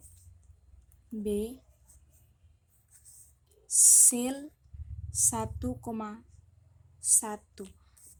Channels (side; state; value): both; identical; correlation 1.00